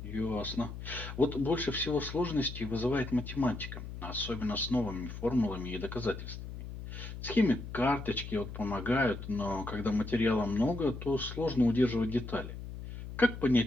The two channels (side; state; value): left; noise; hum, 9 dB below the sound